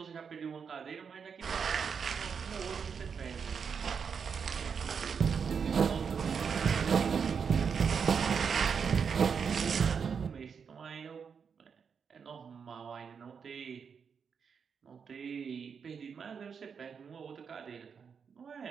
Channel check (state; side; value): quieter; left; 6.4 dB